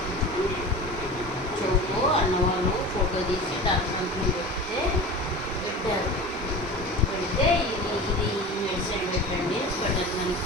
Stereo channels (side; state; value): both; normal; correlation 0.34